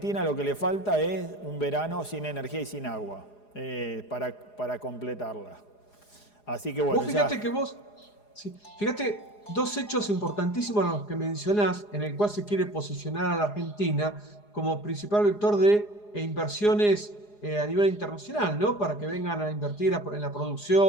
lo que le falta es un verano sin energía y sin agua para completarla. Así que bueno, Vos ya. fíjate que vos, sí, fíjate, dos hechos importantísimos a los que mencionás, en el cual se quiere posicionar a la Argentina como principal vector de inversiones a nivel internacional, ¿no? Para que vengan a invertir en la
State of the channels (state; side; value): late; right; 4.8 ms